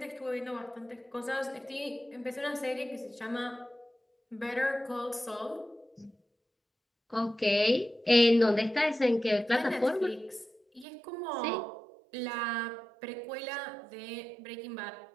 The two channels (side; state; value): left; drops out; at 10.9 s